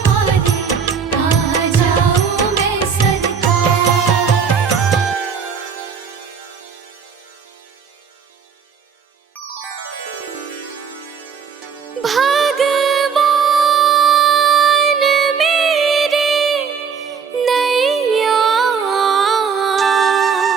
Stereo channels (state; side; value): quieter; left; 6.4 dB